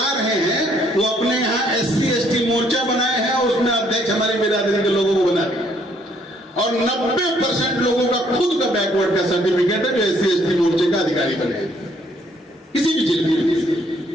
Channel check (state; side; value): normal; both; correlation 0.67